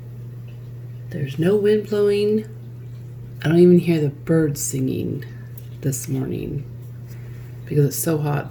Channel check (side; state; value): both; identical; correlation 1.00